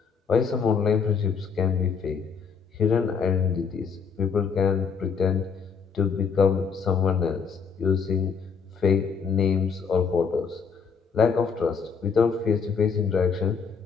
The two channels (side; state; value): right; quieter; 5.9 dB